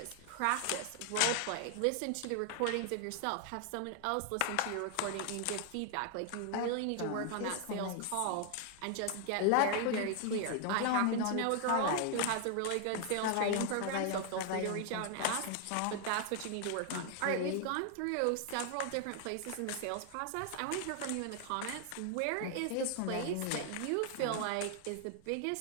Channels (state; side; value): different; both; correlation 0.00